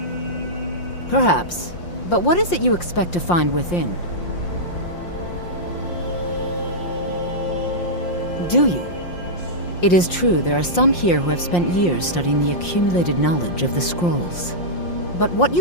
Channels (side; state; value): right; late; 5.7 ms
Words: Perhaps. But what is it you expect to find within? Do you? It is true there are some here who have spent years studying the accumulated knowledge of the scrolls. But what